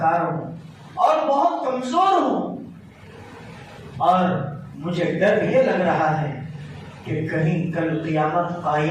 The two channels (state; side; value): identical; both; correlation 1.00